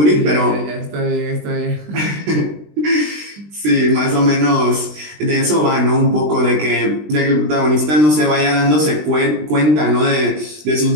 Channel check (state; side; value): late; left; 20 ms